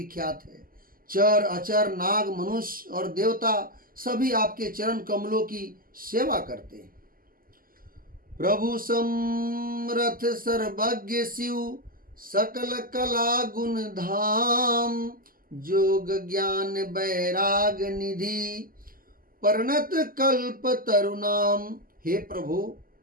है। चर अचर नाग मनुष्य और देवता सभी आपके चरण कमलों की सेवा करते हैं। प्रभु समरथ सर्वज्ञ शिव, सकल कला गुण धाम। जोग ज्ञान बैराग निधि, परिणत कल्प तरुणाम। हे प्रभु,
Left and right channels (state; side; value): late; left; 0.42 ms